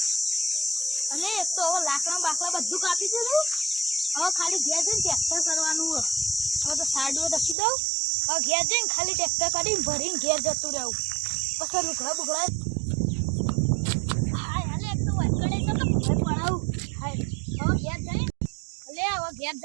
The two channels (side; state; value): left; drops out; at 7.6 s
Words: અને એક તો હવે લાકડા બાકડા બધું કાપી દીધું. હવે ખાલી ઘેર જઈને ટ્રેક્ટર કરવાનું હોય. હવે તો સાડીઓ દસી દઉં. હવે ઘેર જઈને ખાલી ટ્રેક્ટર કરીને ભરીને ઘેર જતું રહેવું. પછી લુગડા બુગડા હાય હાલે એક તો વળગડે તો ઘર પડાવું. હાય હવે ઘેર જઈને હવે ઘેર